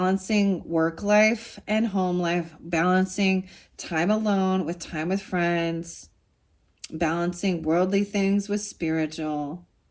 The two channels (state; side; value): identical; both; correlation 1.00